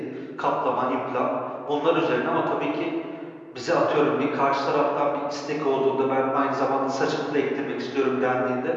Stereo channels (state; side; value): identical; both; correlation 1.00